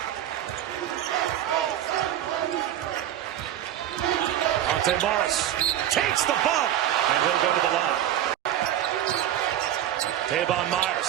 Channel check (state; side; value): quieter; left; 11.6 dB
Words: Monte Morris takes the bump, and he'll go to the line. Tavon